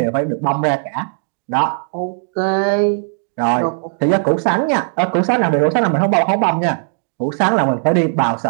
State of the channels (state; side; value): silent; left; digital silence